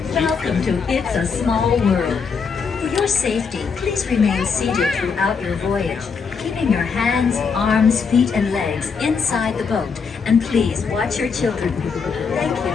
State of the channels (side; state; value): right; quieter; 5.6 dB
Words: Welcome to It's a Small World. For your safety, please remain seated throughout your voyage, keeping your hands, arms, feet, and legs inside the boat. And please watch your children. Thank you.